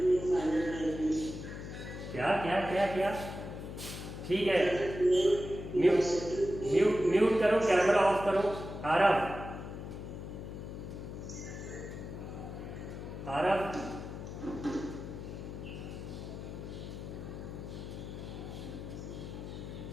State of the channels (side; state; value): left; noise; hum, 9 dB below the sound